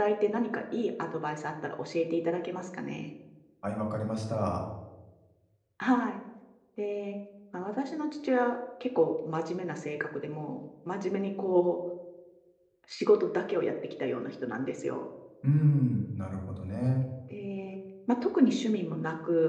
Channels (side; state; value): both; identical; correlation 1.00